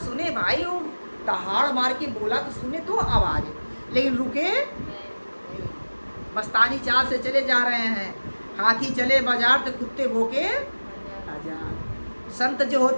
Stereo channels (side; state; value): both; inverted; correlation -1.00